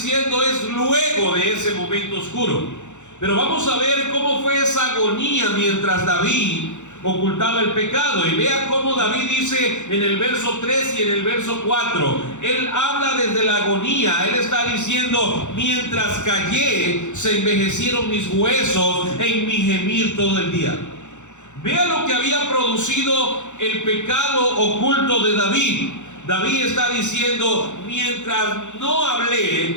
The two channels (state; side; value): late; right; 0.84 ms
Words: es luego de ese momento oscuro. Pero vamos a ver cómo fue esa agonía mientras David ocultaba el pecado. Y vea cómo David dice en el verso 3 y en el verso 4. Él habla desde la agonía. Él está diciendo: mientras callé, se envejecieron mis huesos en mi gemir todo el día. Vea lo que había producido el pecado oculto de David. David está diciendo: mientras no